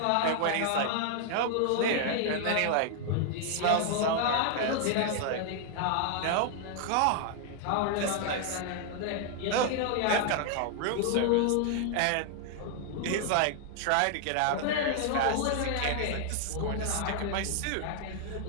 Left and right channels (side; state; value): both; different; correlation 0.00